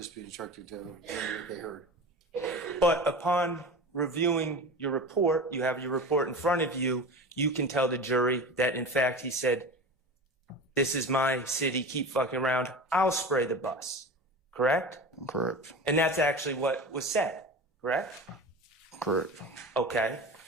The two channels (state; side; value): normal; both; correlation 0.32